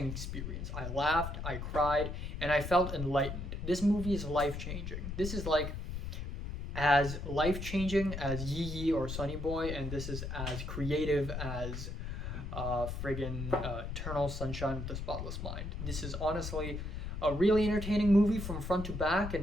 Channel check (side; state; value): left; noise; rumble, 5 dB below the sound